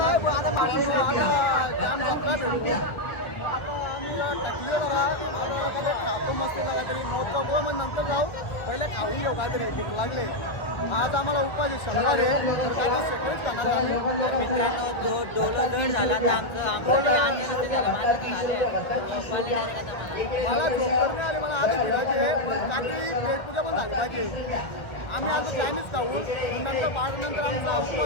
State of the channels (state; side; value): late; right; 1.3 ms